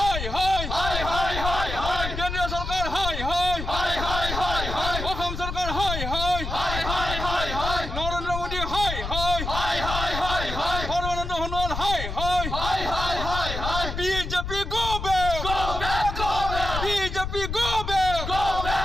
high high high high high কেন্দ্রীয় সরকার high high high high high high অসম সরকার high high high high high high Narendra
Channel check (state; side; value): noise; left; rumble, 5 dB below the sound